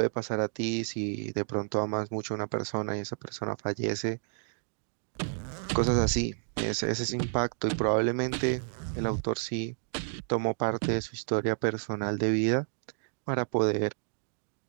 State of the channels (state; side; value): silent; left; digital silence